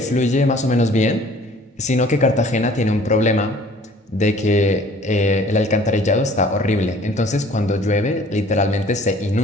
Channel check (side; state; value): both; normal; correlation 0.52